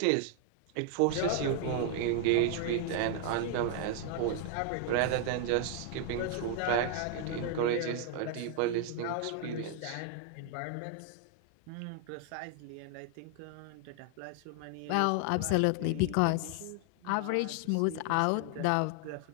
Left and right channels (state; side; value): different; both; correlation 0.00